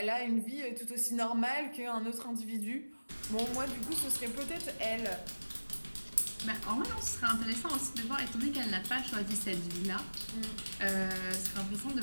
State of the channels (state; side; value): inverted; both; correlation -1.00